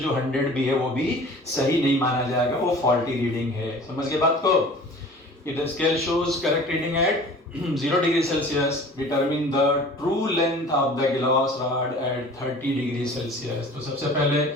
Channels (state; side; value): normal; both; correlation 0.44